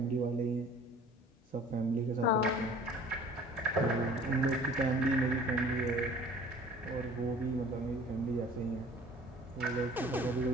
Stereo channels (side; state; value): both; normal; correlation 0.48